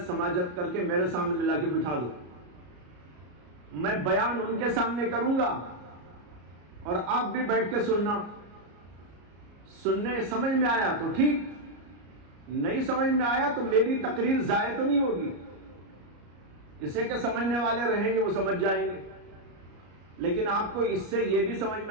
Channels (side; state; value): left; late; 34 ms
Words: سماجت کر کے میرے سامنے لا کے بٹھا دو. میں بیان ان کے سامنے کروں گا اور آپ بھی بیٹھ کے سننا. سننے سمجھ میں آیا تو ٹھیک، نہیں سمجھ میں آیا تو میری تقریر ضائع تو نہیں ہوگی. اسے کہ سمجھنے والے رہیں گے وہ سمجھ جائیں گے. لیکن آپ کو اس سے یہ بھی سمجھ